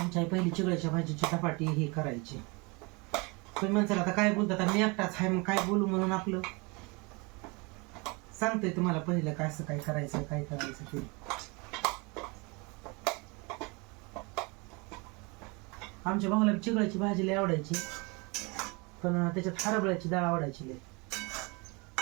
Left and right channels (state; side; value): quieter; left; 28.4 dB